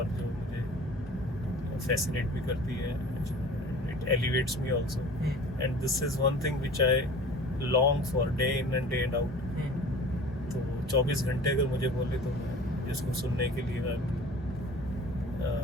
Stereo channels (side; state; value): both; normal; correlation 0.43